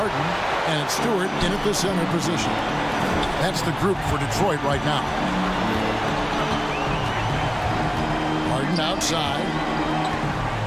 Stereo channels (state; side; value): identical; both; correlation 1.00